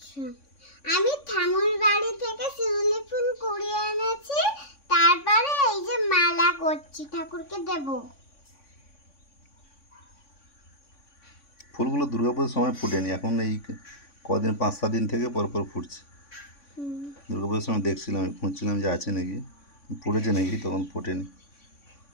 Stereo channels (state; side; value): late; right; 3.5 ms